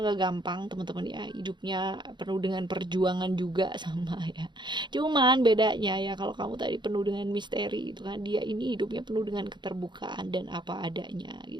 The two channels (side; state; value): left; late; 0.22 ms